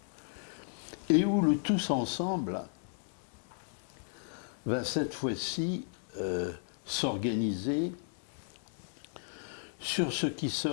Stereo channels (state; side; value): silent; right; 55 dB below the other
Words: et où le tous ensemble va cette fois-ci s'organiser sur ce qui